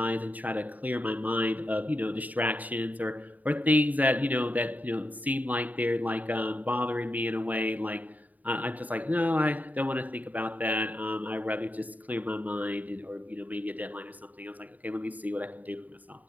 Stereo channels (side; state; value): left; late; 0.077 ms